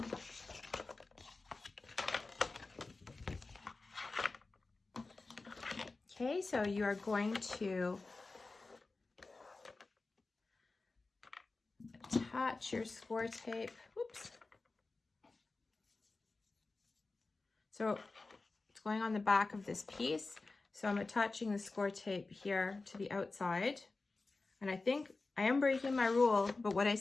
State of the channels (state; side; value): quieter; right; 3.6 dB